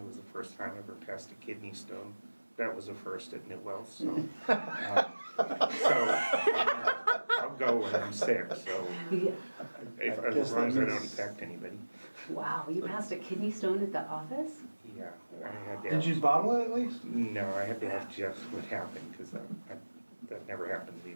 was the first time I ever passed a kidney stone. That was a first at Newell, so I'll go when I'm sick, so Yeah. as long as I don't infect anybody. Wow, you passed a kidney stone at the office? Yeah, I had to Did you have, bottle it at least? no, I had to ask Jeff what happened, because that never happened to me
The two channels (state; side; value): inverted; both; correlation -1.00